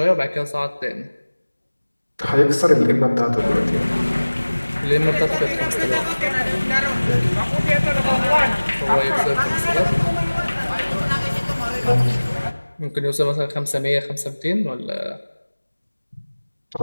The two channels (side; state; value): both; inverted; correlation -1.00